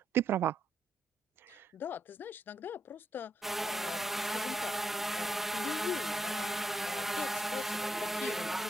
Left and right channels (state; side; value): normal; both; correlation 0.79